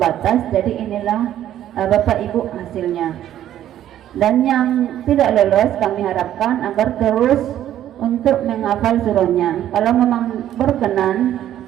jadi inilah Bapak Ibu hasilnya. Dan yang tidak lolos kami harapkan agar terus untuk menghafal surahnya. Kalau memang berkenan,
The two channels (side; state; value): left; quieter; 11.7 dB